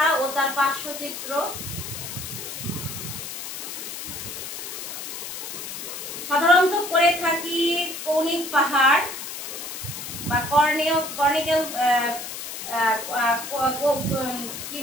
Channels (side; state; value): left; noise; hiss, 8 dB below the sound